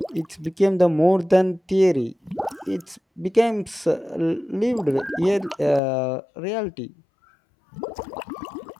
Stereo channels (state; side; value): drops out; right; at 5.8 s